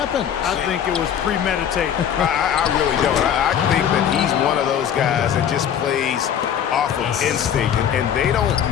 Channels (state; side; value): quieter; right; 9.0 dB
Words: I think it was premeditated. I really don't. I think that he's one of those guys that just plays off of instinct, and they don't